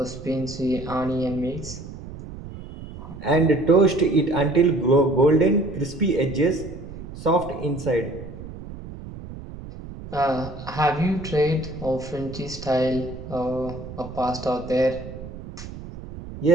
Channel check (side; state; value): right; noise; rumble, 12 dB below the sound